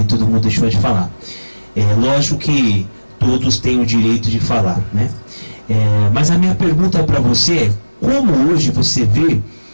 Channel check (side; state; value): both; inverted; correlation -1.00